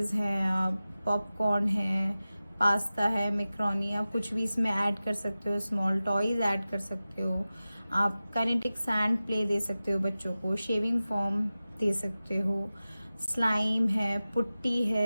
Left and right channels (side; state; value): both; inverted; correlation -0.96